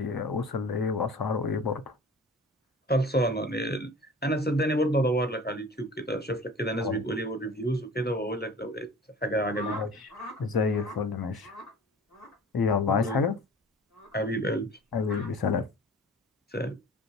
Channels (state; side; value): normal; both; correlation 0.43